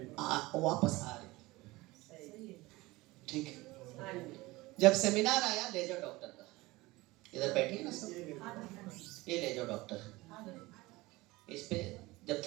वापस आ रही। ठीक है। जब सेमिनार आया लेजर डॉक्टर का, इधर बैठी है ना सब, ये लेजर डॉक्टर, इस पे जब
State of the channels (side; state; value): left; quieter; 20.8 dB